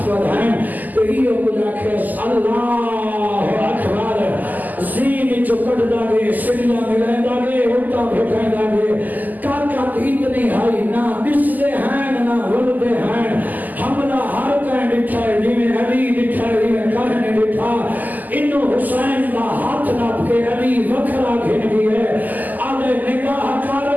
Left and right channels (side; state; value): left; late; 0.083 ms